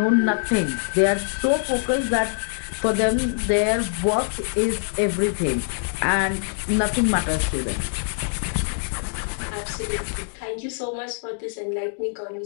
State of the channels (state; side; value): silent; right; digital silence